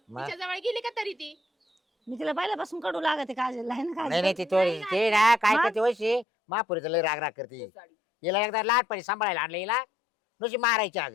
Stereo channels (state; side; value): drops out; right; at 6.2 s